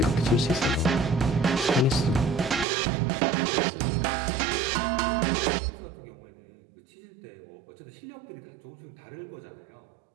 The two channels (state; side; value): drops out; left; at 2.7 s